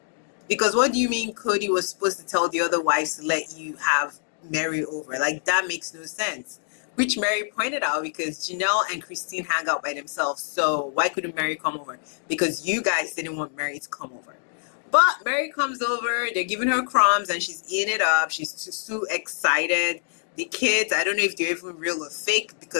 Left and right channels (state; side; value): silent; right; 62 dB below the other